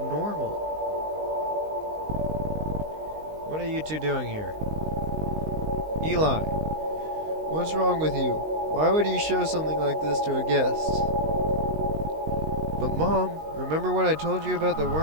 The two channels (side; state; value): left; late; 19 ms